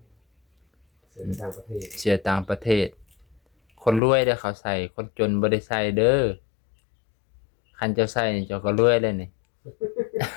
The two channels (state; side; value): drops out; right; at 4.0 s